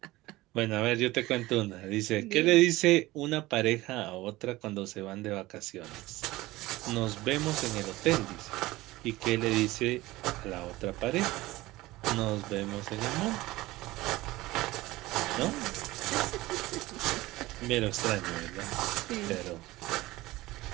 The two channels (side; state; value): left; quieter; 18.8 dB